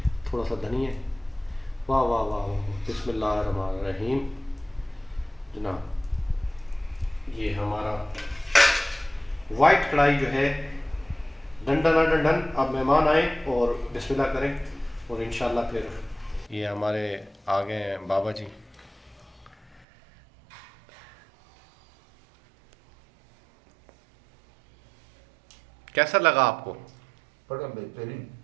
थोड़ा सा धनिया। वाह वाह वाह वाह, बिस्मिल्लाहिर्रहमानिर्रहीम। जनाब ये हमारा वाइट कढ़ाई जो है डंडन डंडन। अब मेहमान आए और बिस्मिल्लाह करें और इंशाल्लाह फिर ये हमारे आ गए हैं बाबा जी। कैसा लगा आपको? बड़ा बेहतरीन।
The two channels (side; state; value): left; drops out; at 19.9 s